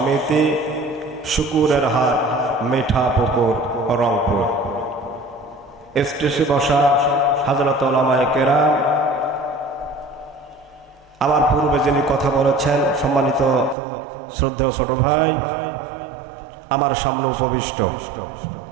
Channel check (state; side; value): drops out; left; at 13.8 s